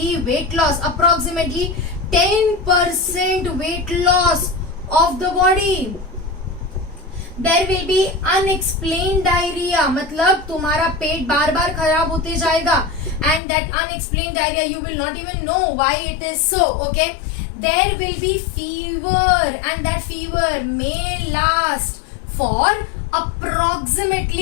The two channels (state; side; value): drops out; right; at 13.4 s